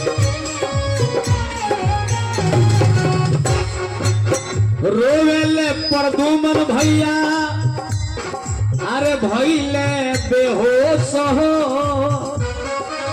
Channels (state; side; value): identical; both; correlation 1.00